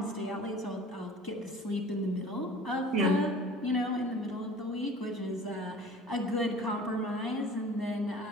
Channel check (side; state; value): both; normal; correlation 0.44